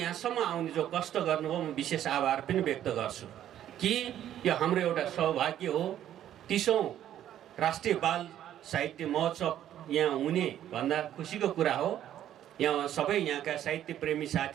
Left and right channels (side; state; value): left; quieter; 11.3 dB